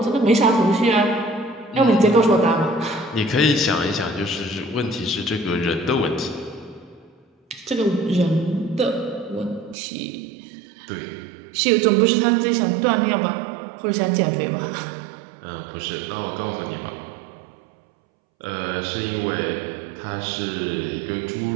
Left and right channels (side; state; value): left; drops out; at 9.8 s